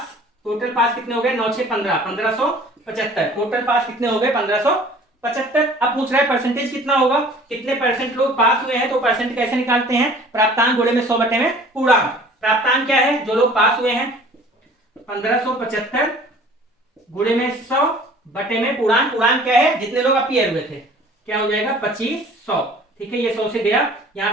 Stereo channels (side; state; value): both; normal; correlation 0.49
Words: कितने हो गए 9 6 15, 1575। टोटल पास कितने हो गए 1575। अब पूछ रहा है परसेंटेज कितना होगा, कितने परसेंट लोग पास हुए हैं, तो परसेंट कैसे निकालते हैं, प्राप्तांक गुणे में 100 में पूर्णांक। प्राप्तांक क्या है, जो लोग पास हुए हैं 1575 गुणे में 100 में पूर्णांक। पूर्णांक क्या है, जितने लोग अपीयर हुए थे, क्या हो जाएगा 2500। ठीक है, ये 100 से गया, यहाँ